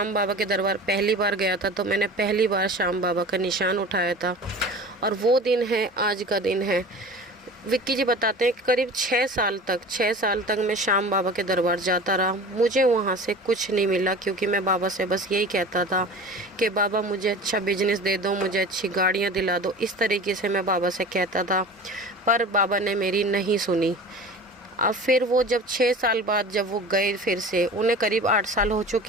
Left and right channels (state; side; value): normal; both; correlation 0.38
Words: बाबा के दरबार पहली बार गया था तो मैंने पहली बार श्याम बाबा का निशान उठाया था, और वो दिन है, आज का दिन है। विक्की जी बताते हैं कि करीब 6 साल तक मैं श्याम बाबा के दरबार जाता रहा। मुझे वहाँ से कुछ नहीं मिला, क्योंकि मैं बाबा से बस यही कहता था कि बाबा मुझे अच्छा बिजनेस दे दो, मुझे अच्छी गाड़ियाँ दिला दो। इस तरीके से मैं बाबा से कहता था, पर बाबा ने मेरी नहीं सुनी। अब फिर वो जब 6 साल बाद जब वो गए, फिर से उन्हें करीब 8 साल हो